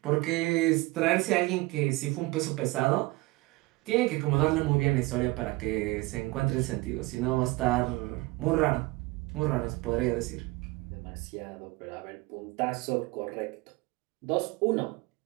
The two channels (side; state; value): left; quieter; 22.3 dB